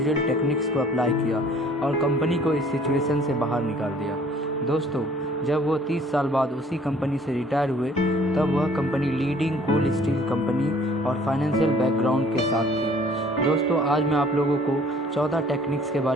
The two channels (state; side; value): normal; both; correlation 0.55